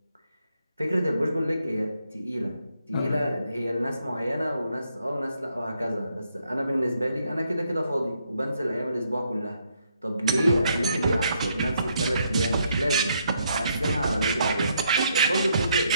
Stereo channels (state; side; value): inverted; both; correlation -0.74